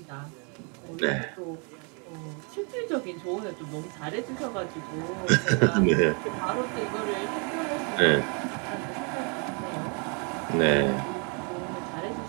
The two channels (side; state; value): left; quieter; 36.7 dB